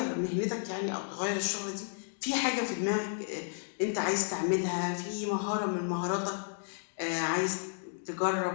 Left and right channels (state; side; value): silent; right; digital silence